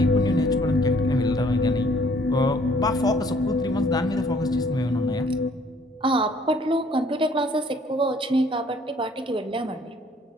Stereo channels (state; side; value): normal; both; correlation 0.60